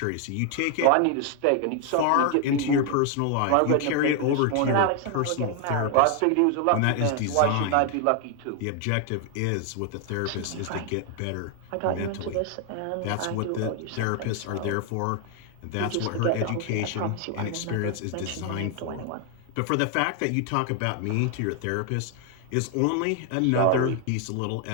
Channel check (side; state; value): both; different; correlation 0.00